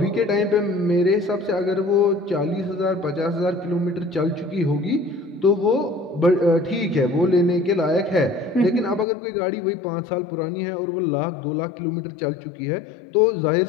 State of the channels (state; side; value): drops out; right; at 9.1 s